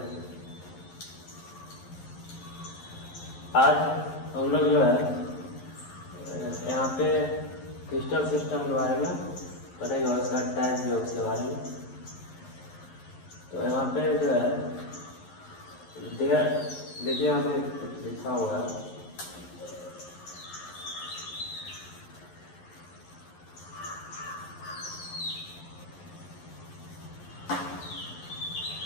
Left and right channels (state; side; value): late; right; 11 ms